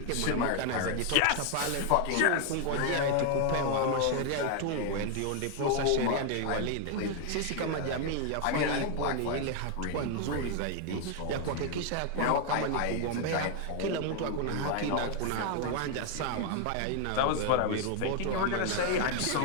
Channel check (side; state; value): both; different; correlation 0.00